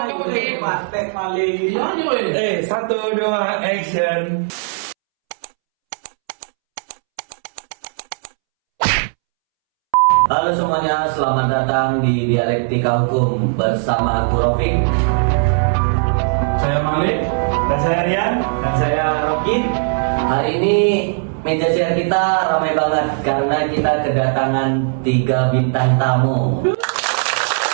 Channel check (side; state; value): left; silent; 68 dB below the other